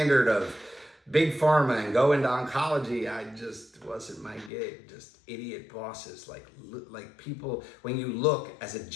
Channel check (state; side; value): drops out; right; at 4.5 s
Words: of big pharma and go into oncology, I just wasn't my gig. Just idiot bosses, like people. When you look as a